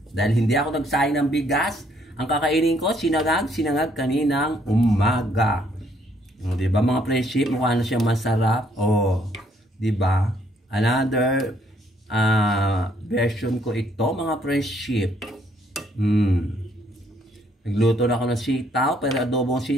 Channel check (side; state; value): both; normal; correlation 0.67